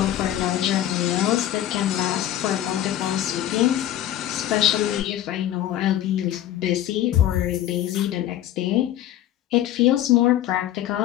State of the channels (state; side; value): quieter; right; 12.4 dB